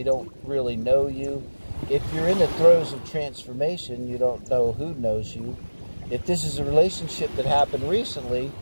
don't really know you. If you're in the throes of transformation, you don't know who knows you. If this is a relationship that happened recently,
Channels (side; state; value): both; inverted; correlation -1.00